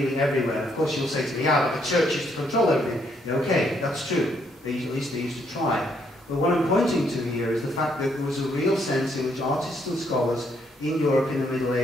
everywhere. Of course, you'll say to me, yeah, but the church used to control everything. Yeah, okay, that's true. At least they used to try. But what I'm pointing to here is the fact that there was a real sense in which artists and scholars in Europe in the Middle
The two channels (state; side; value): normal; both; correlation 0.72